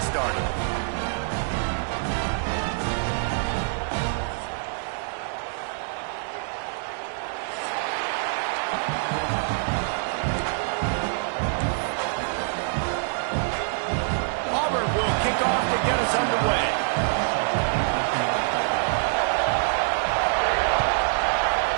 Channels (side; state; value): left; silent; digital silence